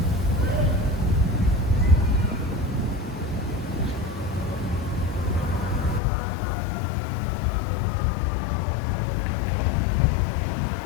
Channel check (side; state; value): right; drops out; at 6.0 s